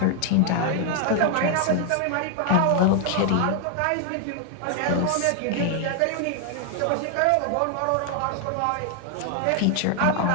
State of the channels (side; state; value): both; different; correlation 0.00